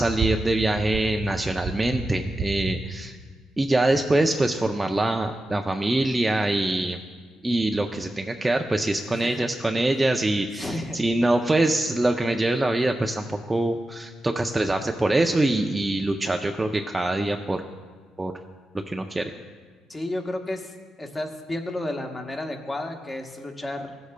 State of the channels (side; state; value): both; normal; correlation 0.92